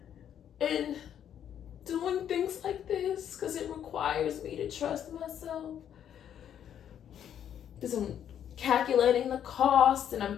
and doing things like this, because it requires me to trust myself, because I'm calculating the cost and I'm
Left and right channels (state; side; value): quieter; right; 9.6 dB